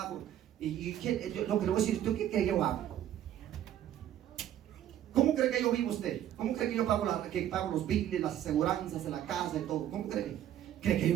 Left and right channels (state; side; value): quieter; left; 11.4 dB